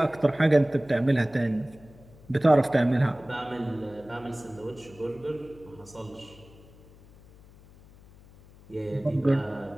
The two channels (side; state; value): left; noise; hum, 23 dB below the sound